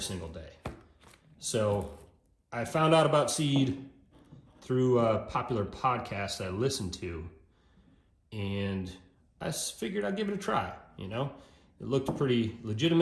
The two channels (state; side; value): identical; both; correlation 1.00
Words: single day. So I found out about Seed through a popular podcast I listened to, and I figured I'd give it a try, It looked pretty